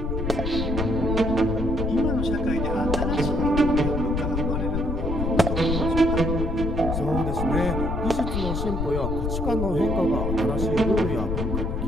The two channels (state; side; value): noise; left; rumble, 2 dB below the sound